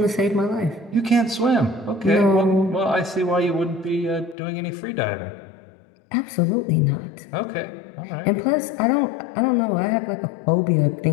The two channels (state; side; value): drops out; right; at 4.4 s